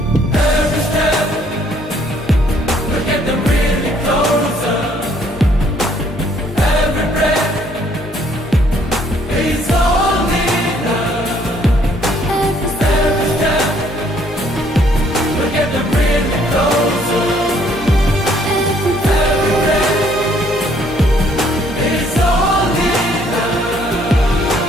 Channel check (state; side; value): normal; both; correlation 0.64